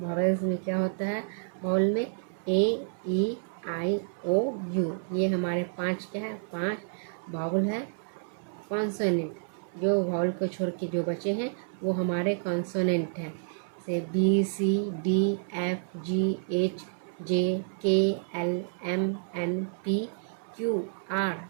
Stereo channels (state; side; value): silent; left; 58 dB below the other